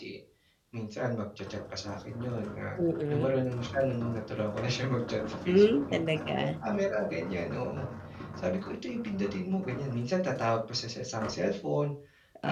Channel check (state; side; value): identical; both; correlation 1.00